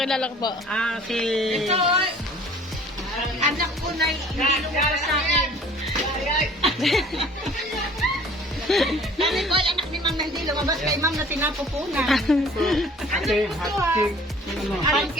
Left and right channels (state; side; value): normal; both; correlation 0.50